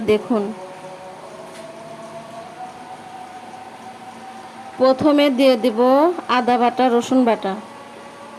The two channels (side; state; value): both; identical; correlation 1.00